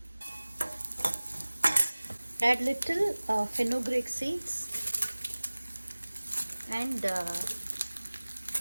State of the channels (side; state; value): both; inverted; correlation -1.00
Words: Add little fenugreek seeds and